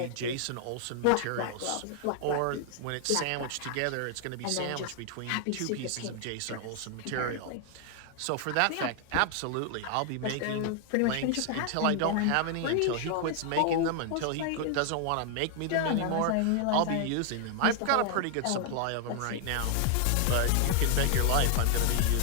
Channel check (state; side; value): different; both; correlation 0.00